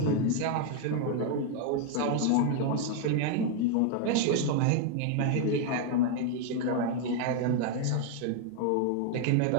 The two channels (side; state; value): both; different; correlation 0.00